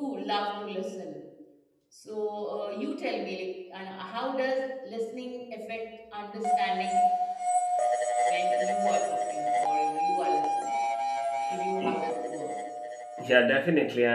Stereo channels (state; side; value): identical; both; correlation 1.00